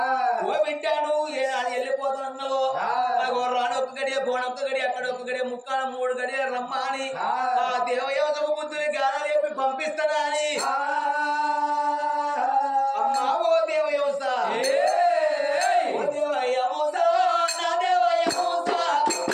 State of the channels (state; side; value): identical; both; correlation 1.00